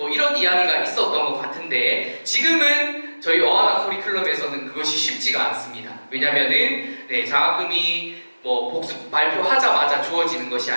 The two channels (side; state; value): both; inverted; correlation -1.00